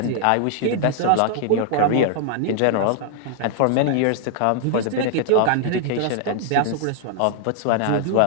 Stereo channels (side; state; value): both; different; correlation 0.00